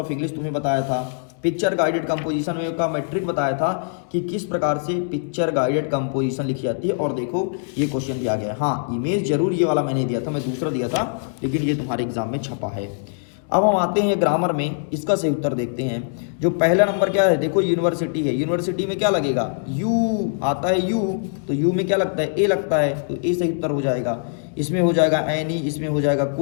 इंग्लिश तुम्हें बताया था, पिक्चर गाइडेड कंपोजिशन में का मैट्रिक बताया था कि किस प्रकार से पिक्चर गाइडेड कंपोजिशन लिखी जाती है। और देखो ये क्वेश्चन भी आ गया। हाँ, इमेज जरूर ये वाला मैंने दिया था, मैं दूसरा दिया था, लेकिन ये तुम्हारे एग्जाम में छपा है। अब हम आते हैं ग्रामर में, इसका सही उत्तर देखते हैं। जो पहला नंबर क्या है, देखो यूनिवर्सिटी है, यूनिवर्सिटी में क्या लगेगा, यू आता है, यू तो यू में क्या लगता है, ए लगता है, तो ए सही उत्तर हो जाएगा। इसमें हो जाएगा एनी, इसमें हो जाएगा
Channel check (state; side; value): silent; right; digital silence